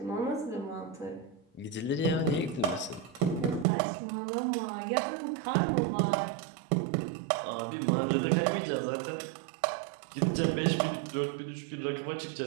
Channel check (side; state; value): left; drops out; at 3.7 s